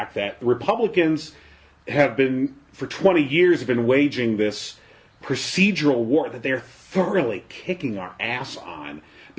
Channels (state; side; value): identical; both; correlation 1.00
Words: that Republicans have been for 20 years have been waging this procedural war that they're thoroughly kicking our ass on